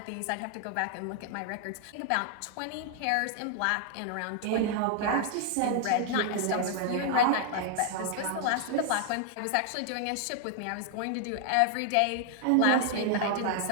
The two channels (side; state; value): both; different; correlation 0.00